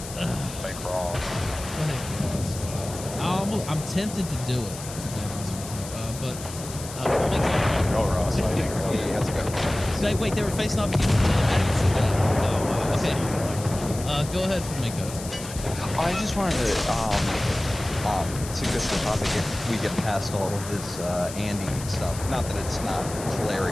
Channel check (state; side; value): noise; left; hiss, 12 dB below the sound